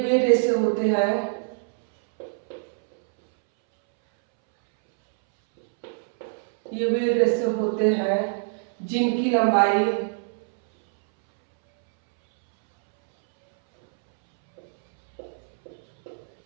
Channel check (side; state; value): left; silent; 63 dB below the other